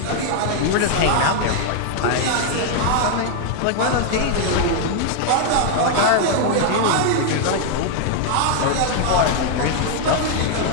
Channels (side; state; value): both; different; correlation 0.00